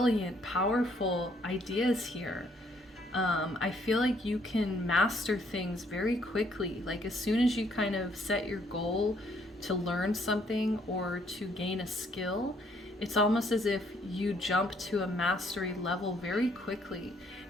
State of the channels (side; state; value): both; normal; correlation 0.67